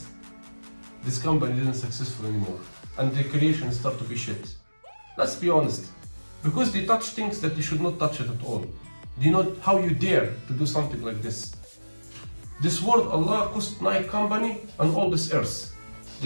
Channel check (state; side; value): inverted; both; correlation -1.00